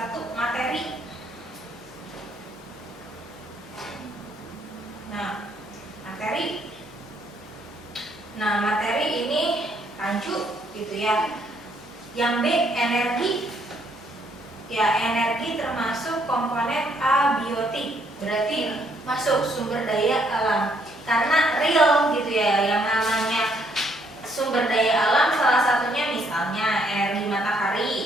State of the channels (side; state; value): both; normal; correlation 0.69